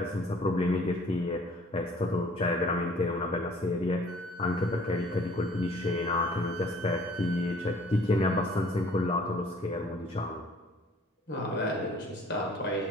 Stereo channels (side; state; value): both; normal; correlation 0.54